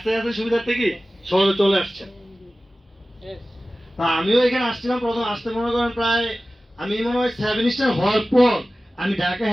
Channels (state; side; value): normal; both; correlation 0.96